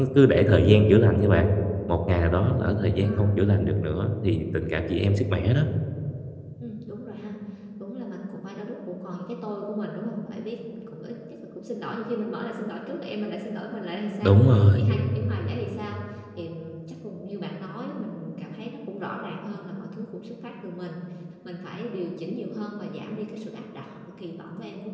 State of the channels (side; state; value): both; identical; correlation 1.00